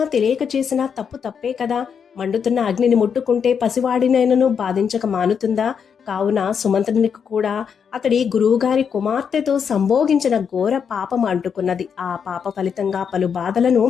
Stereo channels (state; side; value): quieter; right; 6.9 dB